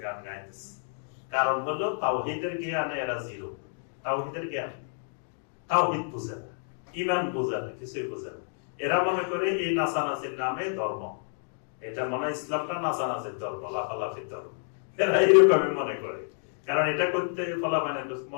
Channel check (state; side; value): silent; right; digital silence